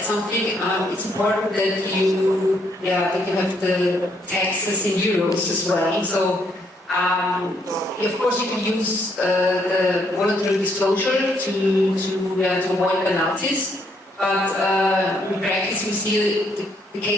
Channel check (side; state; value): both; normal; correlation 0.72